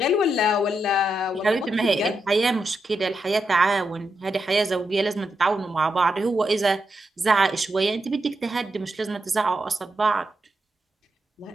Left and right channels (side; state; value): both; normal; correlation 0.84